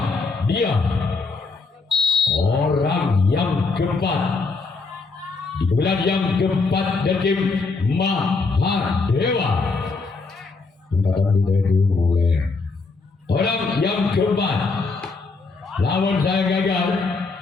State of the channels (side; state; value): right; quieter; 4.1 dB